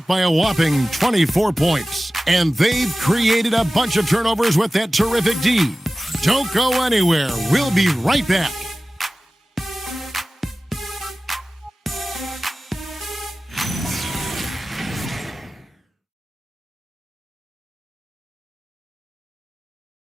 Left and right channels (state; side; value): normal; both; correlation 0.96